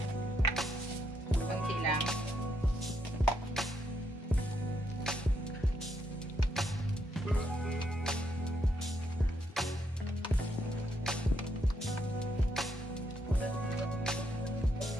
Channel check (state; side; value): normal; both; correlation 0.77